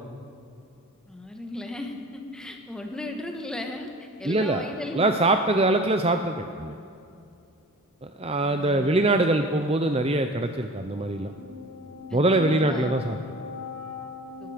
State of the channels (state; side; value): normal; both; correlation 0.41